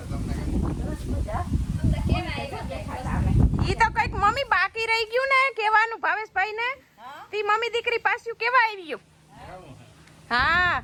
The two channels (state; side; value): identical; both; correlation 1.00